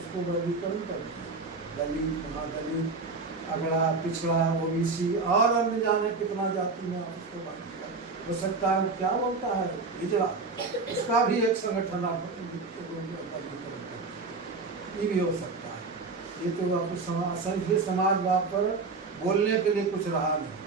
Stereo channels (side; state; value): left; quieter; 4.1 dB